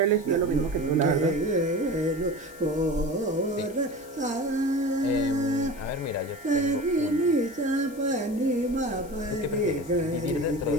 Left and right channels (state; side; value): noise; left; hiss, 22 dB below the sound